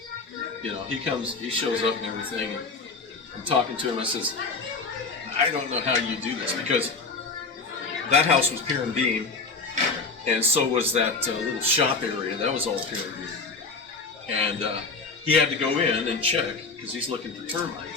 he shows up and everything, and I'm talking to him. I says, I don't know how you do this, because that house was pier and beam, and so was that little shop area. That was all pier and beam. And he had to go in and check, because he's looking for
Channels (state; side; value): quieter; right; 4.2 dB